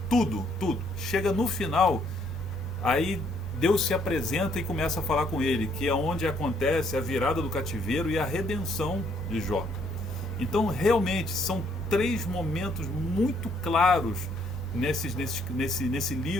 tudo. Chega no final, aí Deus se apresenta e começa a falar com ele, que é onde acontece a virada do cativeiro e a redenção de Jó. Então, realmente, são 3 momentos muito claros nesse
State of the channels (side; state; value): left; noise; rumble, 21 dB below the sound